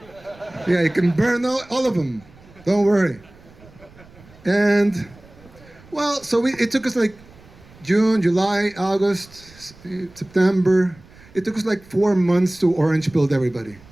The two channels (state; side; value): noise; right; rumble, 24 dB below the sound